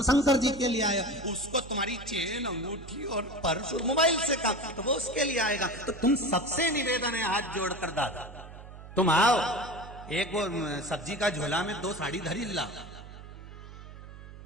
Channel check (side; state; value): right; noise; hum, 15 dB below the sound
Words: शंकर जी के लिए आए, उसको तुम्हारी चेन अंगूठी और पर्स और मोबाइल से काम तो वो उसके लिए आएगा। तो तुम सबसे निवेदन है हाथ जोड़कर दादा तुम आओ, एक वो सब्जी का झोला में 2 साड़ी धरी ला,